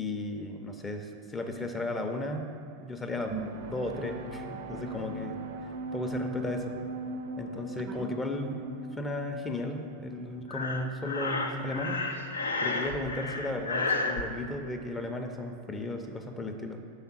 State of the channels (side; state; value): both; normal; correlation 0.15